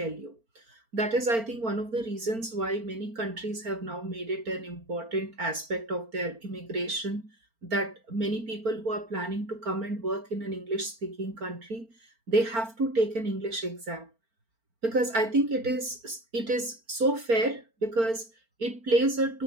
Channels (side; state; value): left; late; 4.4 ms